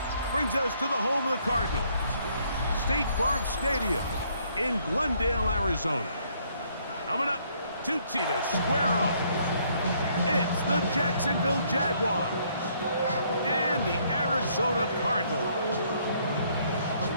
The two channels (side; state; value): both; inverted; correlation -0.67